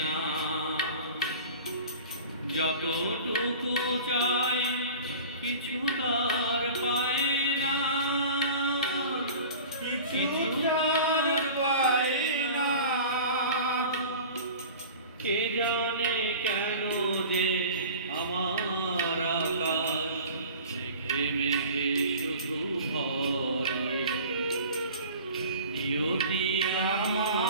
না, যতটুকু চাই কিছু তার পায় না, কিছু তার পায় না। কে জানে কেন যে আমার আকাশ মেঘে মেঘে শুধু ভরে। নিয়তি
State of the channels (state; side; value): inverted; both; correlation -0.40